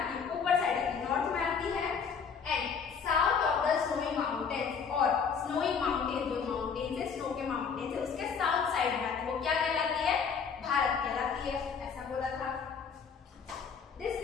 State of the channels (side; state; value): right; quieter; 6.2 dB